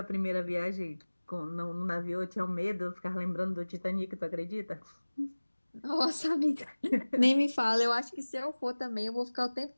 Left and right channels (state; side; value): inverted; both; correlation -1.00